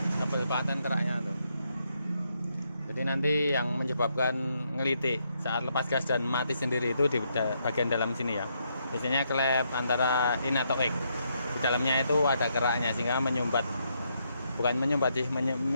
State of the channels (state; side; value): inverted; both; correlation -0.77